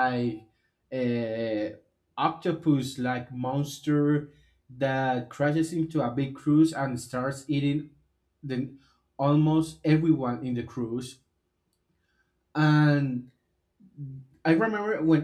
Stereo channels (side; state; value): both; identical; correlation 1.00